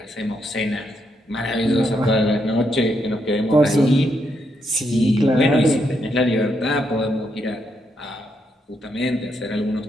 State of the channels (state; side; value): normal; both; correlation 0.79